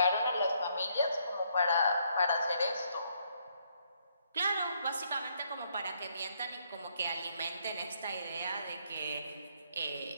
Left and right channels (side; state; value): both; inverted; correlation -0.71